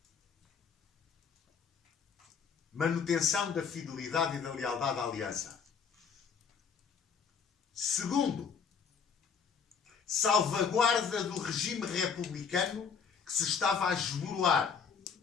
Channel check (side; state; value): right; quieter; 6.3 dB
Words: manutenção da fidelidade e da lealdade à aliança. Segundo, salvaguarda do regime republicano que se estava a esboroar